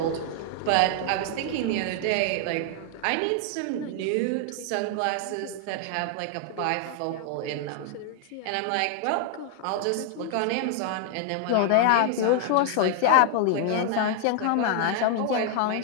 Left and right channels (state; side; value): different; both; correlation 0.00